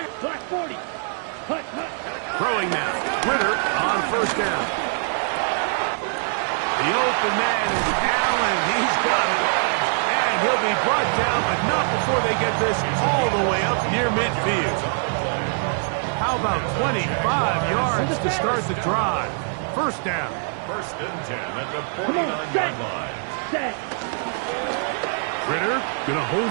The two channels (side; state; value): left; silent; 63 dB below the other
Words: black 40. Hut, hut. Throwing now. Ritter on first down. The open man is Allen. He's got it. He'll be brought down, but not before they get this all the way up near midfield. How about 25 yards to start the drive? First down. First and 10 at the 49-yard line. Set. Ritter going to